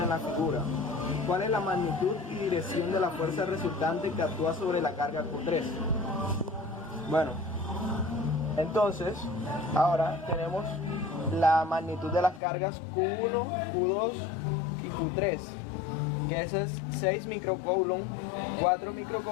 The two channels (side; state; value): right; drops out; at 12.4 s